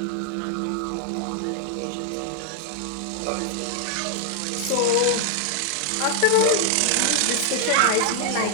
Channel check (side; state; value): both; different; correlation 0.00